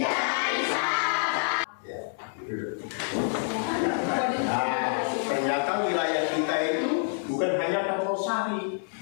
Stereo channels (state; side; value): silent; right; 60 dB below the other